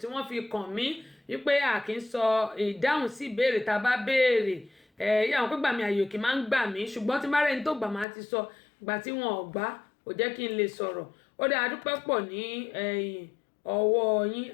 tí wọ́n fi kàn mí wípé a kì í sọ ìdáhùn sí ìbéèrè tá a bá béèrè àwọn pé gbà mí àyè òkè máa ń gbà mí ṣùgbọ́n tí márẹ́ni tó gbà máa ti sọ ìgbà tí wọn ò gbà kò jẹ́ kí n lè sọ̀rọ̀ ó dáa adúpẹ́ pọ̀ ní ọwọ́ yín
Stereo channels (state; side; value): drops out; right; at 8.1 s